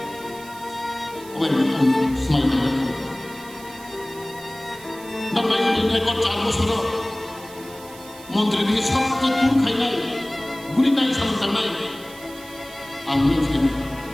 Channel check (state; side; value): noise; right; hiss, 19 dB below the sound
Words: Oke, semai dengan. Dan main ini ekor carbo soro. Montri ini sabtu tur khainai, guri nai samantang nai. Amin sekali.